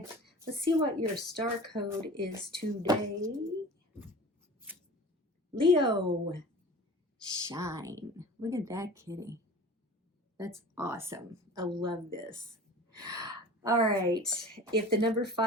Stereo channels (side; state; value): both; normal; correlation 0.39